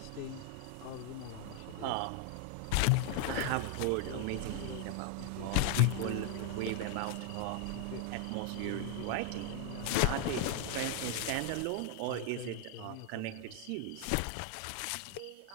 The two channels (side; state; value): both; different; correlation 0.00